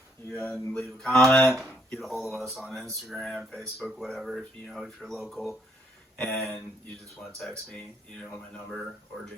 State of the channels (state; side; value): normal; both; correlation 0.70